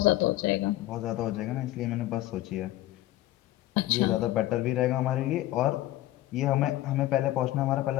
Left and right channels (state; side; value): quieter; right; 15.5 dB